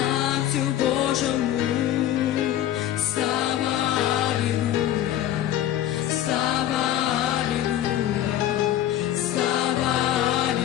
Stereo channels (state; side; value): quieter; right; 12.2 dB